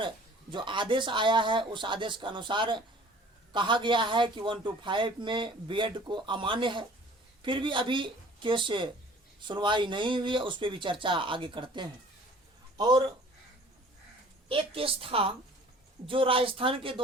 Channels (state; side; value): normal; both; correlation 0.49